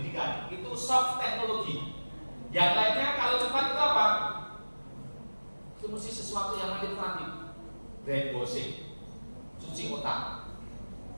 Itu soft teknologi. Yang lainnya kalau cepat itu apa? Itu mesti sesuatu yang manipulatif. Brainwashing, cuci otak.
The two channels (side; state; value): both; inverted; correlation -1.00